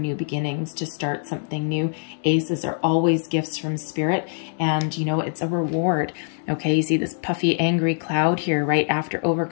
beginnings, to start something new. Aces are always gifts from Spirit, and you know, it's a reward. Okay, you see this puffy, angry cloud here, right after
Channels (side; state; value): right; silent; 63 dB below the other